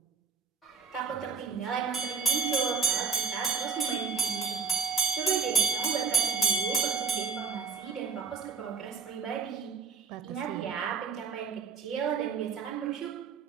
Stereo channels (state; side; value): quieter; left; 5.4 dB